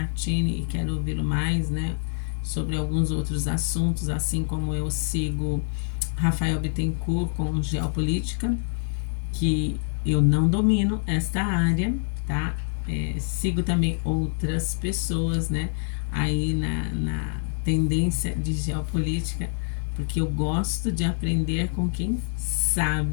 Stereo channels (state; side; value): silent; right; 61 dB below the other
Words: e quero ouvi-lo mais, né? Sobre alguns outros assuntos, assim como eu sigo Rafael Bittencourt com geopolítica, que eu não domino esta área, tá? Sigo também outras pessoas, né? Aí na tendência de geopolítica, porque eu gosto de aprender com quem